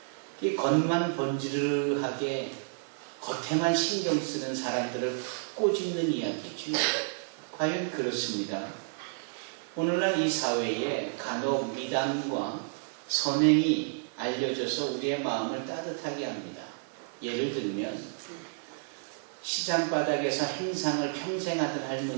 이 겉만 번지르르하게 겉에만 신경 쓰는 사람들을 꼬집는 이야기죠. 과연 그렇습니다. 오늘날 이 사회에 간혹 미담과 선행이 알려져서 우리의 마음을 따뜻하게 합니다. 예를 들면 시장바닥에서 행상을 평생 하던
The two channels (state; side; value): silent; left; 57 dB below the other